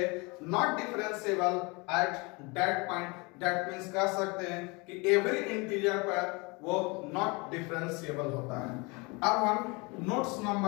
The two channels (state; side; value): quieter; right; 27.8 dB